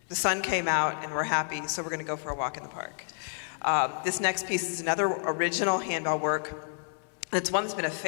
the sun came out and we're happy, so we're going to go for a walk in the park. This next piece is another original handbell work. It's one that's been a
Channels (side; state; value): right; silent; digital silence